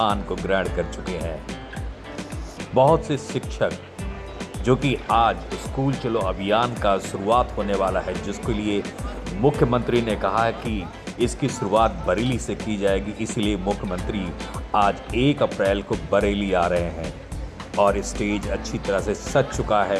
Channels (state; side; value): identical; both; correlation 1.00